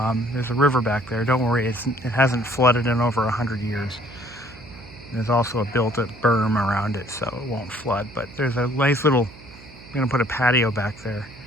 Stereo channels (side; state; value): right; noise; hum, 20 dB below the sound